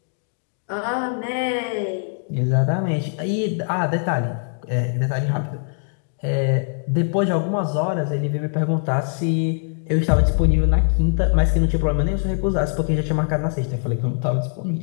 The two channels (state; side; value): silent; right; 64 dB below the other